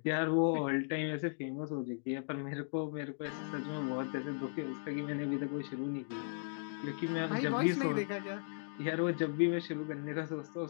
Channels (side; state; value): right; silent; digital silence